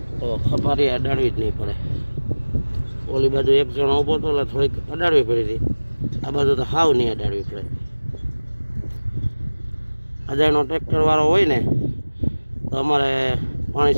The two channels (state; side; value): inverted; both; correlation -1.00